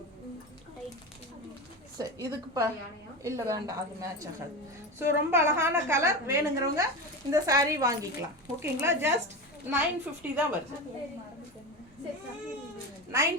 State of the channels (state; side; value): normal; both; correlation 0.23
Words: சரி, இதுக்கு இல்லை வேண்டாம், அது மேட்ச் ஆகாது. ஸோ ரொம்ப அழகான கலர். வேணுங்கிறவங்க இந்த சாரீ வாங்கிக்கலாம். ஓகேங்களா? ஜஸ்ட் 950 தான் வருது.